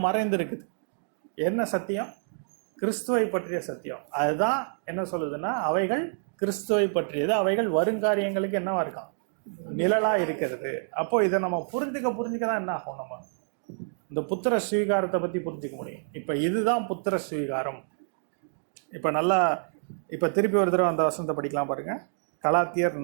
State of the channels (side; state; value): left; silent; digital silence